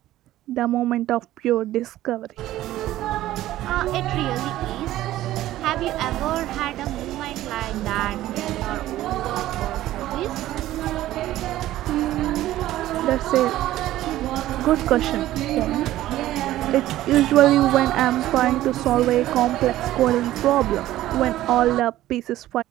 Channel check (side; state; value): left; quieter; 14.6 dB